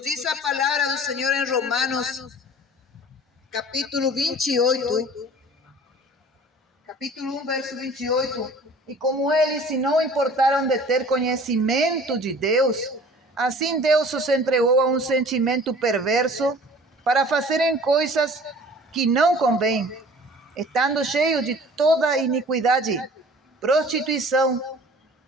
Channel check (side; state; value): both; normal; correlation 0.47